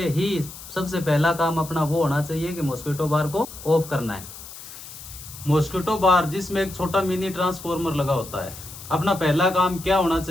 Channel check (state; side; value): noise; left; hiss, 14 dB below the sound